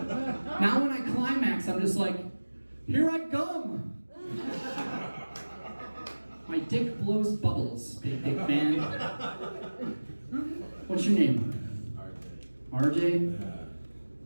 Now when I climax, I'm just like, here I come. My dick blows bubbles, big dick man. What's your name? RJ?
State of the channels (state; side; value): inverted; both; correlation -1.00